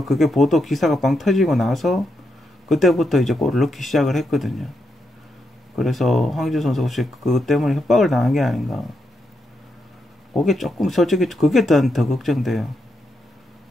그게 보도 기사가 빵 터지고 나서 그때부터 이제 골을 넣기 시작을 했거든요. 그래서 황의조 선수가 혹시 그것 때문에 협박을 당한 게 아닌가. 그게 조금 솔직히 그게 더 걱정돼요.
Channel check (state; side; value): normal; both; correlation 0.82